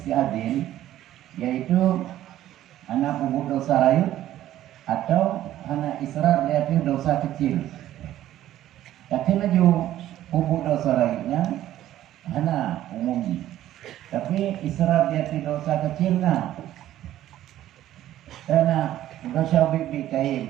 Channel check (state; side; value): quieter; left; 13.1 dB